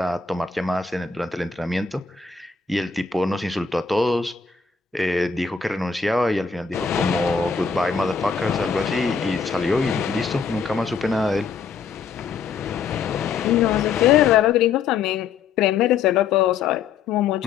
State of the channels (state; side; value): quieter; right; 5.8 dB